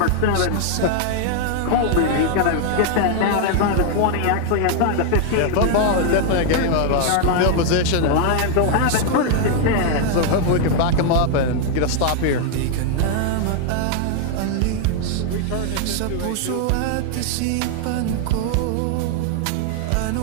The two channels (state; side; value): different; both; correlation 0.00